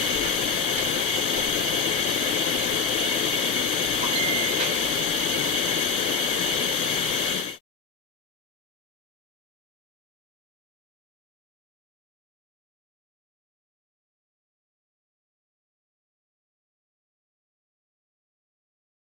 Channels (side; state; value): right; quieter; 4.9 dB